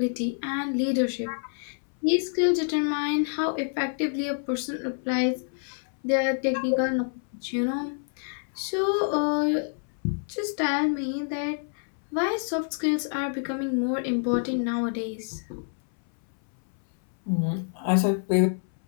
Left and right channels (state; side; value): silent; right; 60 dB below the other